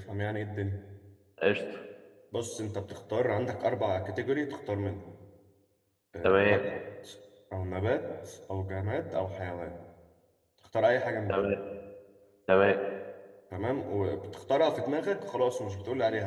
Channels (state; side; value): identical; both; correlation 1.00